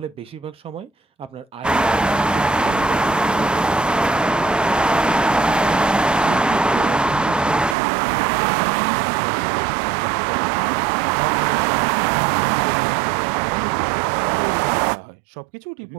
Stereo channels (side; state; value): left; drops out; at 7.8 s